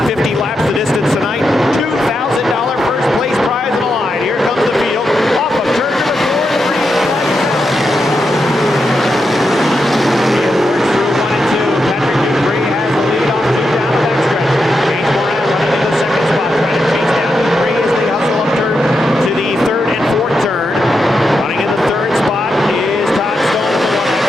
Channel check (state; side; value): normal; both; correlation 0.86